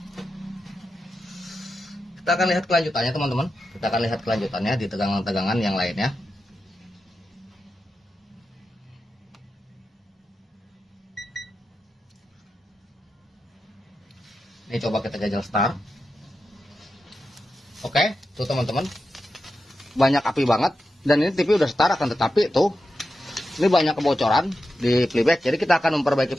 kelanjutannya teman-teman. Kita akan lihat kelanjutannya di tegangan-tegangan yang lainnya. Ini coba kita jajal start. Oke, tuh teman-teman, banyak api banget. Dan ini TV udah start, akan tetapi tuh ini banyak kebocoran di playback, jadi kita akan memperbaiki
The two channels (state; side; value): normal; both; correlation 0.90